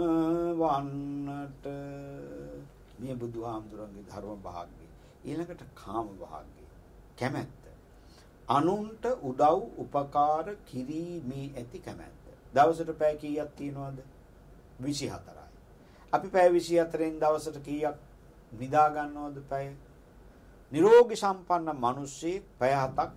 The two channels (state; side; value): identical; both; correlation 1.00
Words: මේ බුදුහාමුදුරන්ගේ ධර්ම භාග්‍යය. ඊළඟට කාම භාග්‍යය. කැමැත්ත. අනුන්ට උදව් උපකාර කිරීමේ ඇති කැමැත්ත. දවසට පැය කීයක් තියනවද? 24යි. අපි පැය 24න් දවසට කීයක් නිදා ගන්නවද පැය? නිරෝගී සම්පන්න මිනිස්සෙක් පැය 7ක්